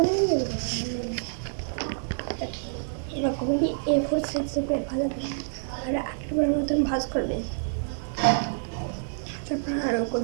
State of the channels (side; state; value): left; silent; digital silence